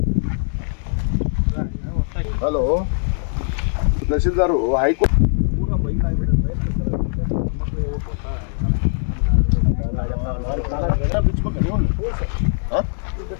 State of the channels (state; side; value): silent; right; digital silence